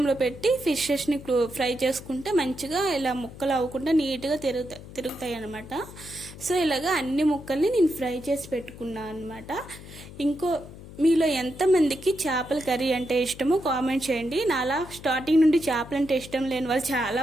పెట్టి ఫిషెస్ని ఫ్రై చేసుకుంటే మంచిగా ఇలా ముక్కలు అవ్వకుండా నీట్గా తిరుగుతాయి అనమాట. సో ఇలాగా అన్ని ముక్కల్ని నేను ఫ్రై చేసి పెట్టుకున్నాను అనమాట. మీలో ఎంతమందికి చేపల కర్రీ అంటే ఇష్టమో కామెంట్ చేయండి. నాలా స్టార్టింగ్ నుండి చేపలు అంటే ఇష్టం లేని వాళ్ళు చాలా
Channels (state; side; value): noise; left; hum, 16 dB below the sound